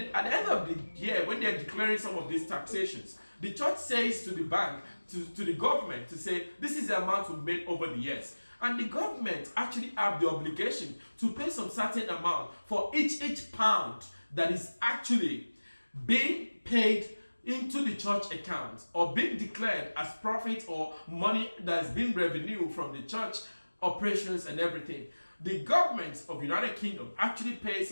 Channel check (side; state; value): both; inverted; correlation -1.00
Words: at the end of the year, when they're declaring some of these taxations, the church says to the bank, to the government, to say, this is the amount we've made over the years. And the government actually have the obligation to pay some certain amount for each pound that is actually being paid into the church account, or being declared as profit or money that's been revenue from the church operations and everything. The government of United Kingdom actually pays